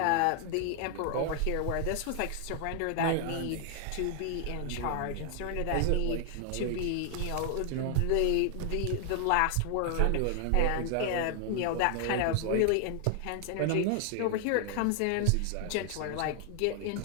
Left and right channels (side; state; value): both; different; correlation 0.00